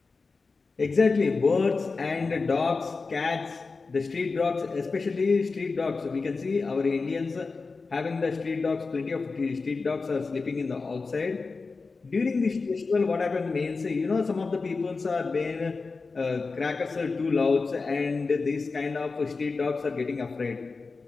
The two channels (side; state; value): right; quieter; 4.2 dB